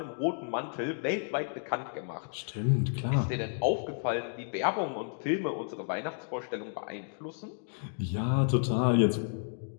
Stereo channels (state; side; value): silent; right; 57 dB below the other